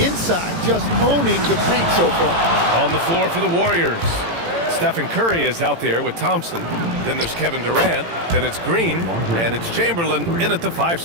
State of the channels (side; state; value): left; late; 18 ms